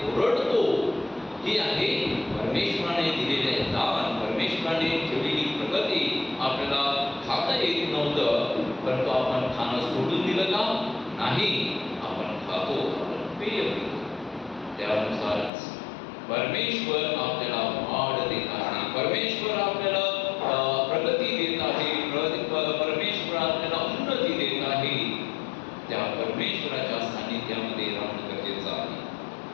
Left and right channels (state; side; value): drops out; right; at 15.5 s